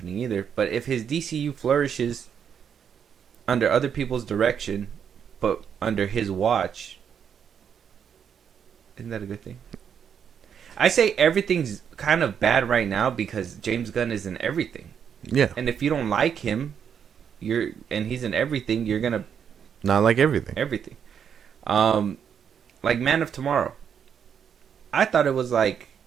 either. But if his DCU flourishes under other people's direction, but under his watch, isn't that a good thing? I say everything's kind of bad right now because James Gunn is in everything. Yeah. And if you don't like him, and he's in everything, you're gonna not like everything. Everything. Like Man of Tomorrow. We thought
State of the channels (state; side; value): quieter; left; 7.8 dB